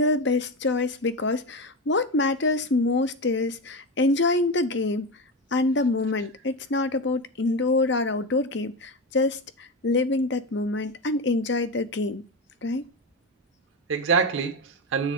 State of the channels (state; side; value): normal; both; correlation 0.17